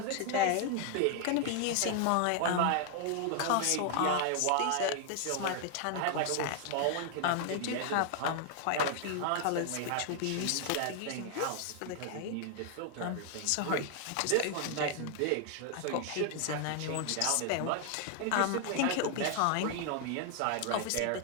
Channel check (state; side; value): different; both; correlation 0.00